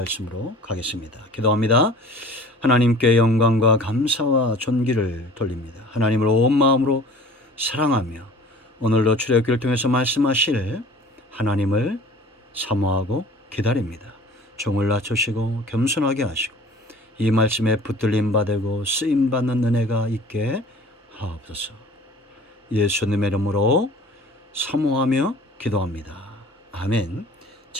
가겠습니다. 기도합니다. 하나님께 영광과 감사와 존귀를 돌립니다. 하나님을 온 마음으로 사랑하며 오늘도 출애굽기를 통해서 말씀하실 하나님을 사모하고 기다립니다. 종을 낮추시고 겸손하게 하시고 이 말씀에 붙들림 받고 쓰임 받는 은혜가 있게 하옵소서. 예수님의 이름으로 사모하며 기도합니다. 아멘.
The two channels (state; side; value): normal; both; correlation 0.47